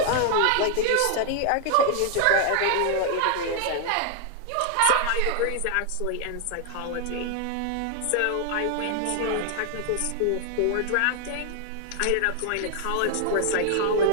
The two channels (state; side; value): different; both; correlation 0.00